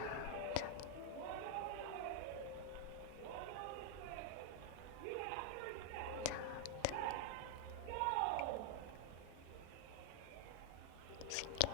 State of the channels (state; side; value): different; both; correlation -0.01